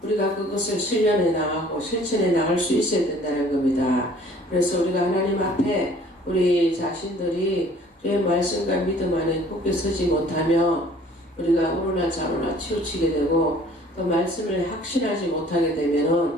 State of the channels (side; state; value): both; normal; correlation 0.53